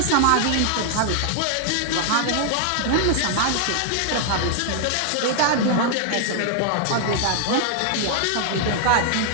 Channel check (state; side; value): different; both; correlation 0.00